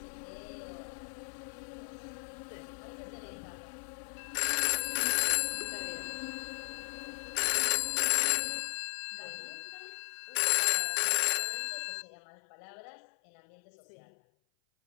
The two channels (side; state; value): right; silent; 54 dB below the other